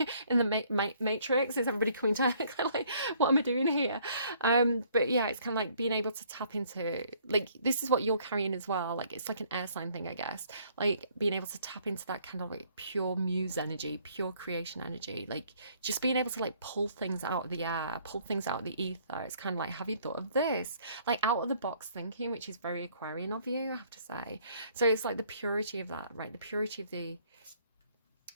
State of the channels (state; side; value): inverted; both; correlation -0.62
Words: in the matrix, is everybody coming to kind of like, what am I doing here? But yeah, it's kind of like being able to tap into, like, this is what you're carrying as well. Like, it's like an air sign thing, I guess. Like, being able to tap into that kind of like pure muse energy, pure creation energy, like just being able to like pull things out of the air, pull things out of the ether. It's kind of like, have you thought of this? Like, out of the box thinking, which is very Aquarian of you, I have to say. So it's like the purity of that, right? The purity of the,